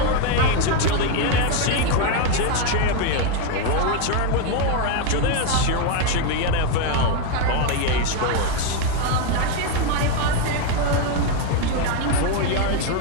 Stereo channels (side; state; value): both; different; correlation 0.01